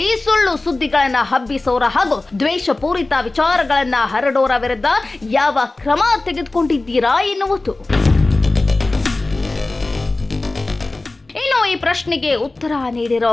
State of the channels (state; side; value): quieter; right; 3.1 dB